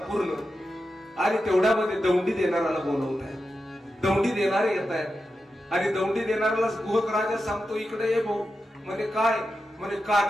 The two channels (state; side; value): normal; both; correlation 0.90